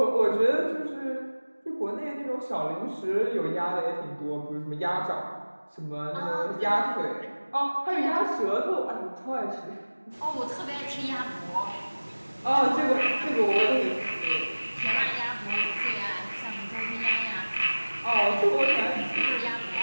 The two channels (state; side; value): inverted; both; correlation -1.00